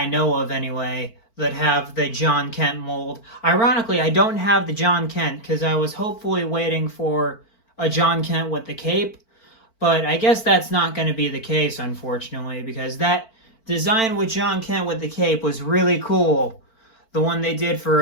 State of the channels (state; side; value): late; right; 4.5 ms